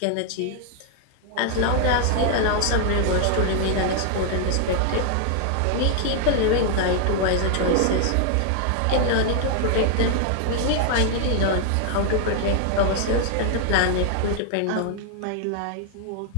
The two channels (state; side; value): different; both; correlation 0.00